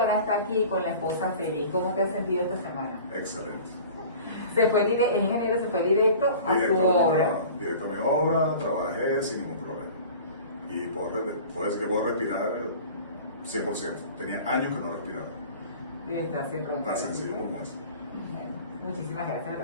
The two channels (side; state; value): both; inverted; correlation -0.42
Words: está aquí con la esposa feliz. ¿Cómo te has sentido esta semana? Excelente. El ingeniero se fue directo a su obra. Directo a mi obra, trabajé sin ningún problema. Y puedo decir que puedo respirar 100%. Tenía años que no respiraba. Y está sin roncar. Tan sencillo como eso. Muchísimas gracias